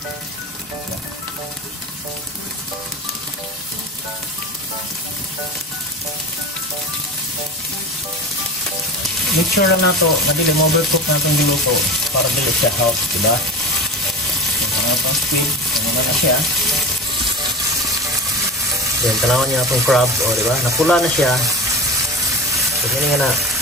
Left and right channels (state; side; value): normal; both; correlation 0.30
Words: Make sure lang nato na dili mo-overcook natin yung luto para dili siya hot, diba? So, itong squid, naman na siya. Then, tanawan niya itong crab, o diba? Napula na siya. So, hindi nga na,